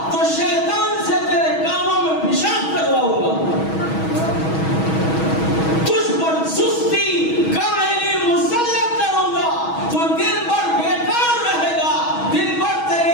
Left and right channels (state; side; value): late; right; 6.2 ms